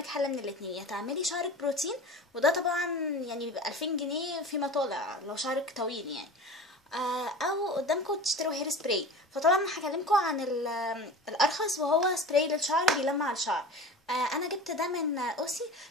حل من الاتنين: يا تعملي شعرك بروتين، وده طبعا يعني بيبقى 2000 جنيه فيما طالع لو شعرك طويل يعني. او قدامكم تشتروا هير سبراي. فطبعا هكلمكم عن الارخص، وهو سبراي للشعر بيلمع الشعر. انا جبت ده من اوسي،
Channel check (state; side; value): normal; both; correlation 0.36